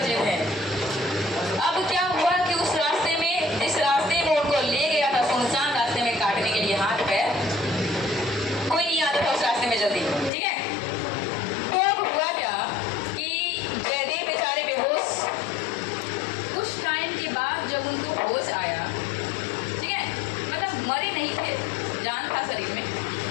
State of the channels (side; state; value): right; drops out; at 10.3 s